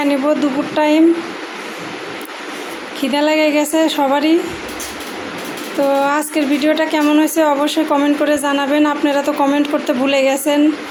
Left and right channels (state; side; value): identical; both; correlation 1.00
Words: নিব। দুপুর টাইম, খিদে লেগে গেছে সবারই। তো আজকের ভিডিওটা কেমন হয়েছে অবশ্যই কমেন্ট করে জানাবেন। আপনারা তো কমেন্ট করতে ভুলে গেছেন।